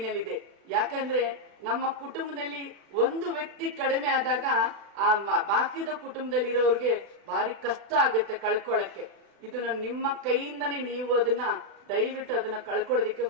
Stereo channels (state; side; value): late; left; 36 ms